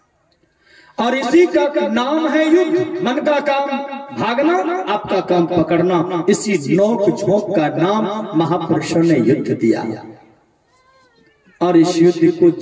और इसी का नाम है युद्ध। मन का काम भागना, आपका काम पकड़ना। इसी नोक झोंक का नाम महापुरुषों ने युद्ध दिया। और इस युद्ध को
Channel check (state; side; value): identical; both; correlation 1.00